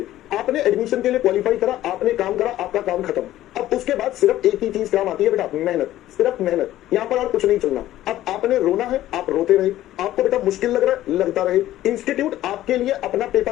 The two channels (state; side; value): quieter; right; 14.1 dB